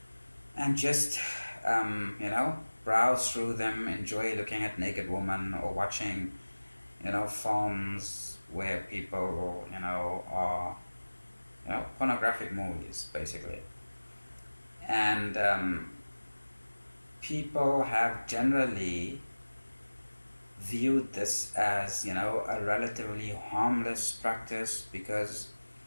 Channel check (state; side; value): inverted; both; correlation -1.00